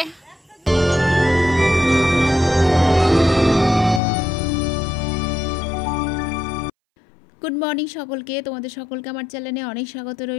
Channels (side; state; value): right; drops out; at 4.0 s